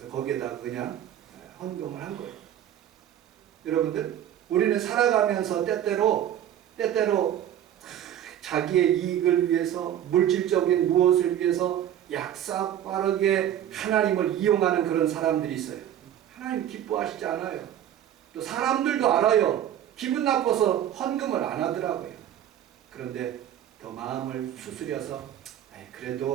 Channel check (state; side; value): quieter; left; 10.9 dB